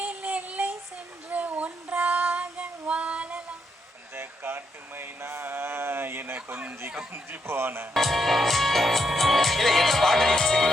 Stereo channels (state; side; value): normal; both; correlation 0.78